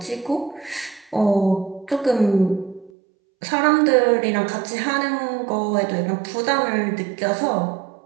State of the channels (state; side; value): drops out; left; at 2.9 s